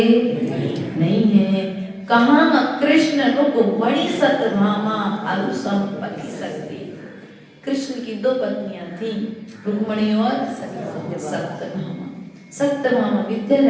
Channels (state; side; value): identical; both; correlation 1.00